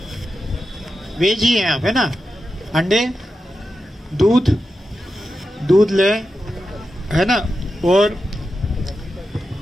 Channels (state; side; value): normal; both; correlation 0.90